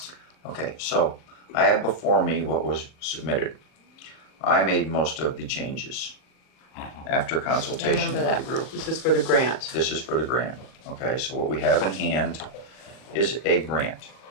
Okay, so I have before me what was submitted. I made most of the changes after consultation with the group. This is for the grant. This is for the grant. Okay, so what we have in hand is a grant.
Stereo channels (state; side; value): late; right; 39 ms